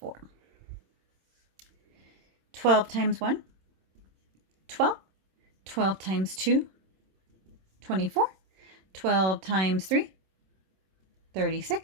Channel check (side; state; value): left; late; 26 ms